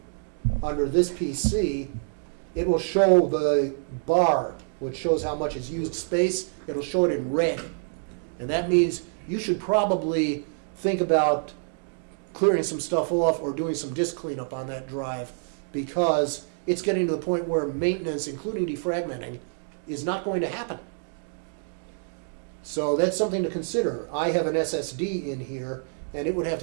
under this PC. It will show the bar, which shows how much is used space. It'll show it in red. And that means you should probably think about clearing some stuff off or doing some disk cleanup on that drive, because it's getting to the point where maintenance, including defragmenting, is not going to happen. So that's something to consider. I have an SSD in here, and it would have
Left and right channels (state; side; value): silent; left; digital silence